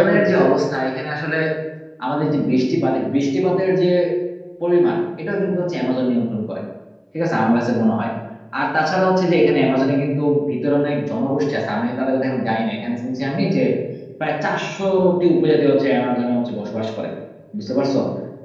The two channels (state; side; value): identical; both; correlation 1.00